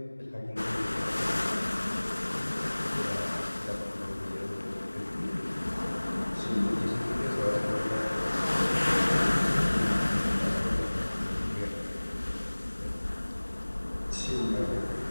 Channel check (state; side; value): inverted; both; correlation -1.00